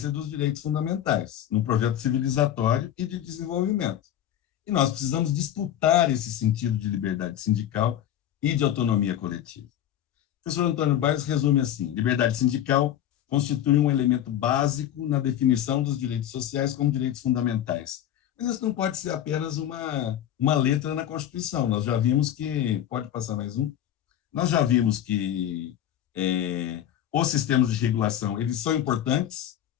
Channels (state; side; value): quieter; right; 11.2 dB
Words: dos direitos fundamentais no projeto civilizatório e de desenvolvimento. E nós precisamos disputar esse sentido de liberdade sindical e de autonomia coletiva. O professor Antônio Bairros resume assim: liberdade sindical constitui um elemento básico na definição dos direitos sociais como direitos fundamentais. Mas isso não pode ser apenas uma letra na Constituição. Nós já vimos que, pode passar mais um, nós já vimos que os sistemas de regulação, eles são importantes,